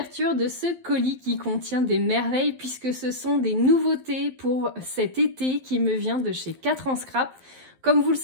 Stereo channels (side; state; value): left; late; 11 ms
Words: de ce colis qui contient des merveilles puisque ce sont des nouveautés pour cet été qui me vient de chez 4 en scrap. Comme vous le